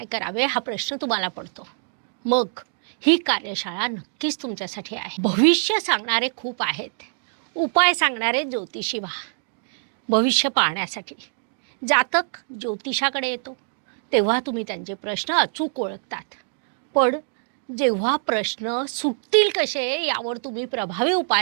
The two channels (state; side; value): silent; left; digital silence